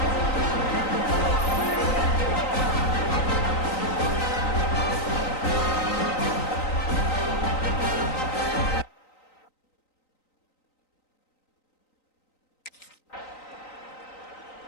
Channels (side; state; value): right; late; 3.9 ms